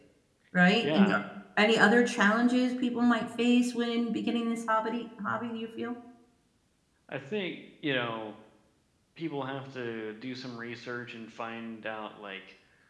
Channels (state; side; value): identical; both; correlation 1.00